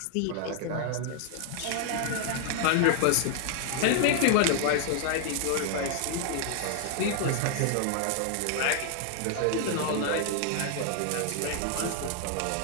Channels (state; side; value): different; both; correlation 0.00